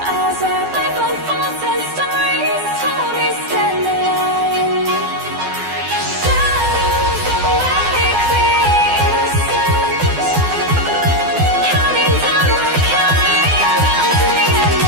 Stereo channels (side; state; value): left; late; 12 ms